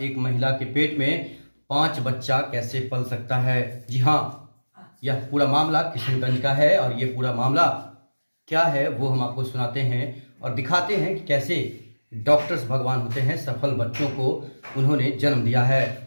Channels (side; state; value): both; inverted; correlation -1.00